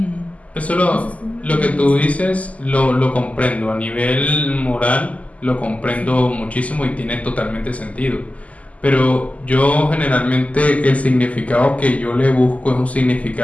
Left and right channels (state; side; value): late; right; 0.070 ms